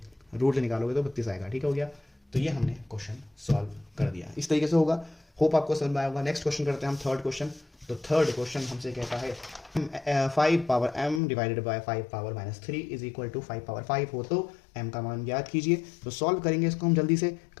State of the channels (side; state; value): right; drops out; at 11.2 s